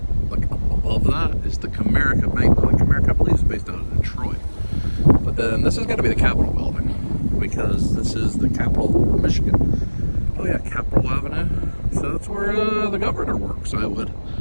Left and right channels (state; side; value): inverted; both; correlation -1.00